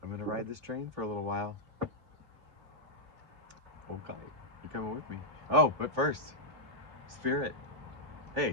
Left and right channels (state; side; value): late; left; 3.4 ms